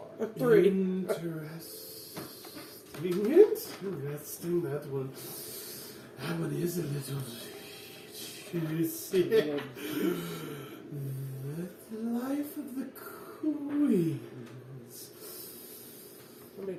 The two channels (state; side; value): identical; both; correlation 1.00